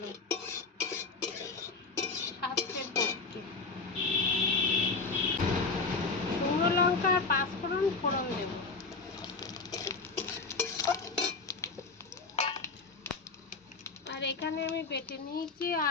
স্বাস্থ্যের পক্ষে। শুকনো লঙ্কা আর পাঁচফোড়ন ফোড়ন দেব। আর এখানে আমি বেটে নিয়েছি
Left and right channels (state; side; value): quieter; right; 4.1 dB